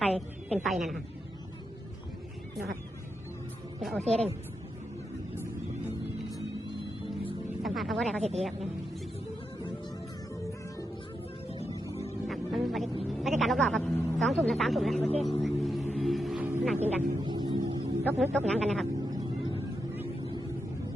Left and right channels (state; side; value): normal; both; correlation 0.85